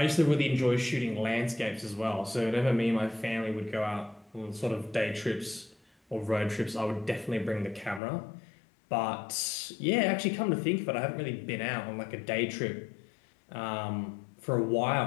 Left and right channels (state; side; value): drops out; right; at 8.0 s